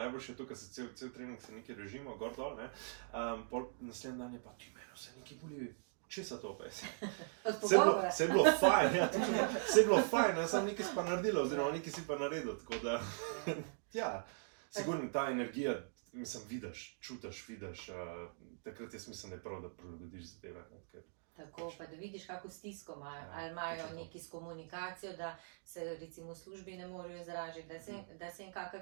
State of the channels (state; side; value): silent; left; digital silence